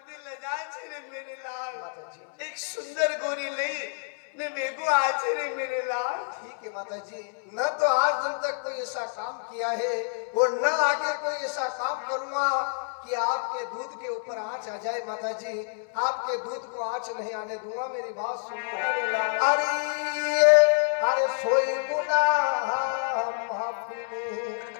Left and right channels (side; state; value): right; silent; 59 dB below the other